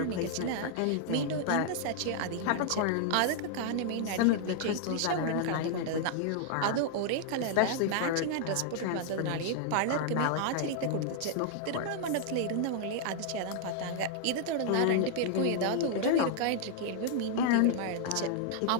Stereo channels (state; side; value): different; both; correlation 0.00